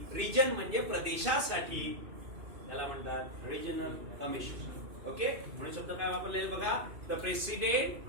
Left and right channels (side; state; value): left; late; 2.5 ms